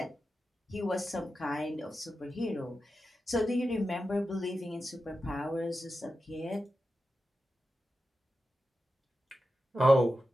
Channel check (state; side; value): normal; both; correlation 0.91